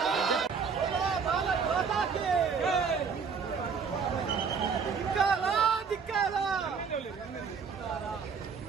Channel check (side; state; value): left; quieter; 5.8 dB